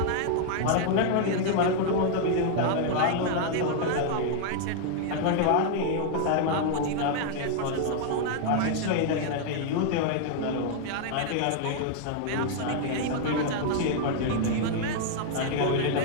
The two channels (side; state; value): both; different; correlation 0.00